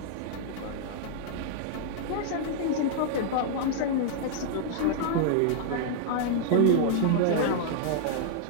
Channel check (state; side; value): different; both; correlation -0.01